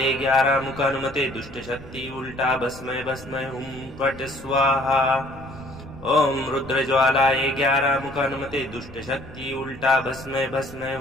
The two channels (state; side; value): noise; left; rumble, 19 dB below the sound